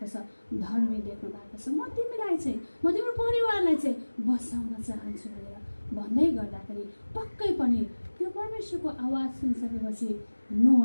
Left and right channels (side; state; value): both; inverted; correlation -1.00